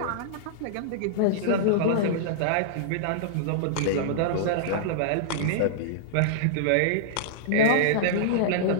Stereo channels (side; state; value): both; different; correlation -0.02